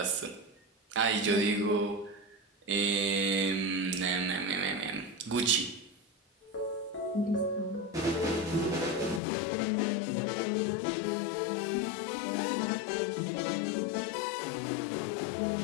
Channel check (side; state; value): right; drops out; at 9.2 s